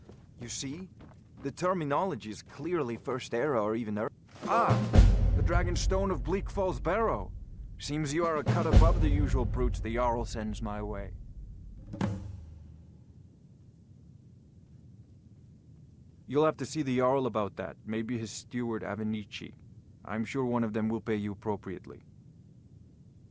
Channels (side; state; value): both; identical; correlation 1.00